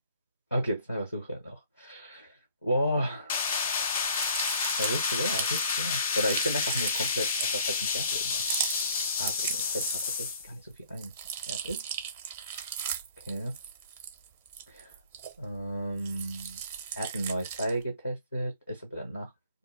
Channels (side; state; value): both; inverted; correlation -0.56